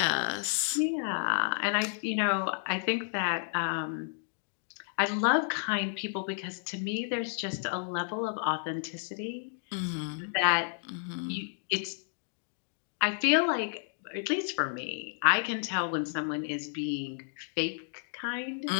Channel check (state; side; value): silent; right; digital silence